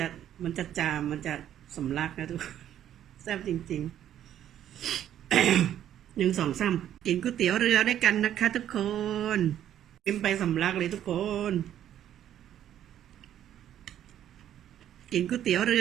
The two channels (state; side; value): quieter; left; 10.9 dB